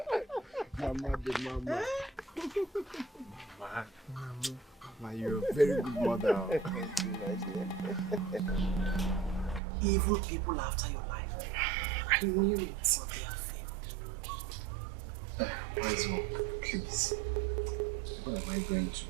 Mama. Mama, you're a very good mother. Evil people after your life. I knew it. But they have failed. Wise one, please. What am I going to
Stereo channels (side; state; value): left; drops out; at 9.6 s